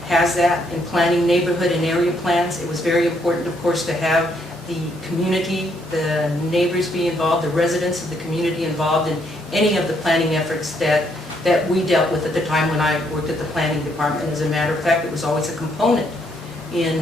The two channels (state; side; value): normal; both; correlation 0.72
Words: has that in planning neighborhood and area plans. It was very important, of course, to have the community, the neighbors be involved, the residents of the community involved in any of the planning efforts that we dealt with at the time when I worked at the planning department. As a matter of fact, it was always a component in